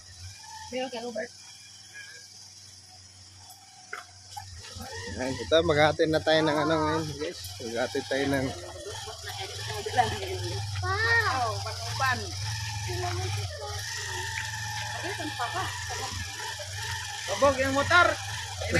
Meron ka Robert. Ayan, ito, maghahatid na tayo ng ano ngayon, guys. Maghahatid tayo ng... Pa. Pag-upan. Bobog yung motor.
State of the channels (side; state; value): both; identical; correlation 1.00